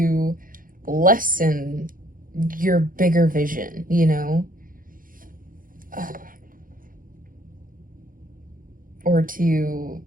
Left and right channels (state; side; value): late; left; 0.40 ms